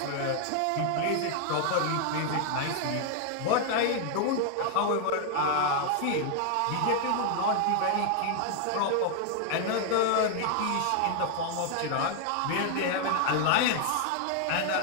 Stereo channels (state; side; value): different; both; correlation 0.00